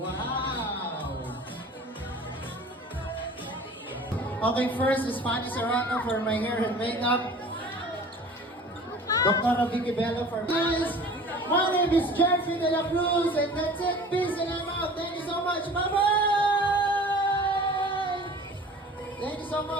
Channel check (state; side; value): normal; both; correlation 0.43